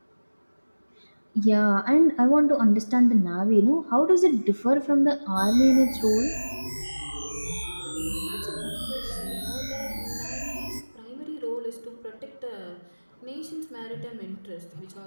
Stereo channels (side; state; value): both; inverted; correlation -1.00